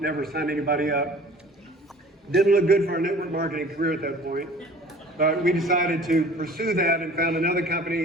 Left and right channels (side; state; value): both; normal; correlation 0.47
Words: signed anybody up. Didn't look good for our network marketing career at that point, but we decided to pursue that and found another